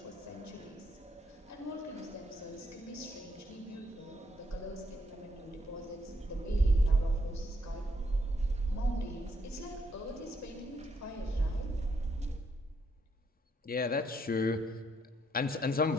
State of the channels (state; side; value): normal; both; correlation 0.74